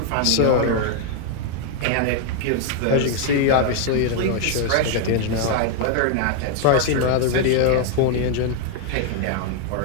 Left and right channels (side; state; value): both; different; correlation 0.00